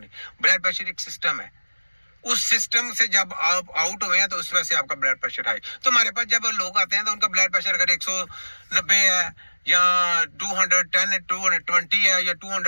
ब्लड प्रेशर एक सिस्टम है, उस सिस्टम से जब आप आउट हुए हैं तो उस वजह से आपका ब्लड प्रेशर हाई। तो हमारे पास जब लोग आते हैं तो उनका ब्लड प्रेशर अगर 190 है या 210 220 है या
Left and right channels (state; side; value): inverted; both; correlation -1.00